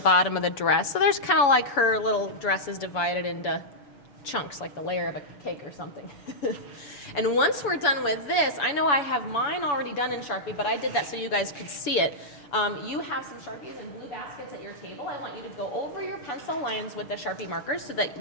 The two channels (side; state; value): right; late; 7.0 ms